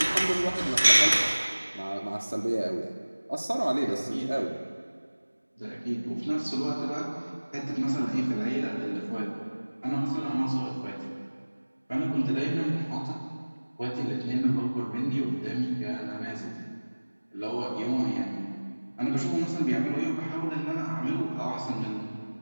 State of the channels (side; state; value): both; inverted; correlation -1.00